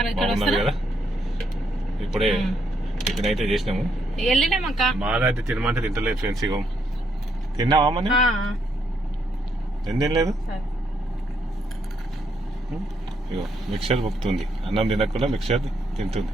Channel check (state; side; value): normal; both; correlation 0.75